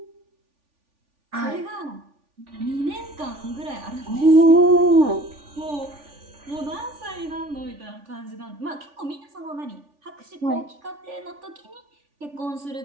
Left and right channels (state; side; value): late; left; 3.5 ms